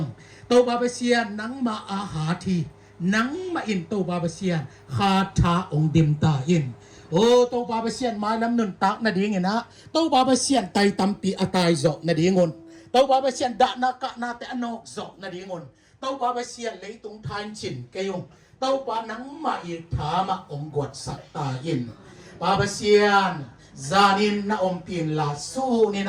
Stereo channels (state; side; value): identical; both; correlation 1.00